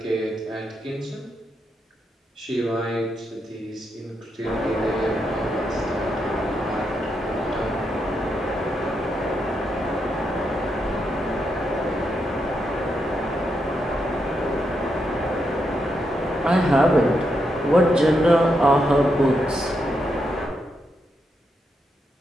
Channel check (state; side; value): normal; both; correlation 0.82